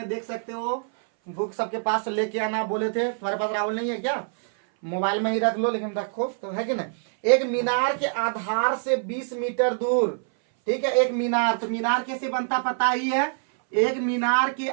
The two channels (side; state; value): left; silent; 59 dB below the other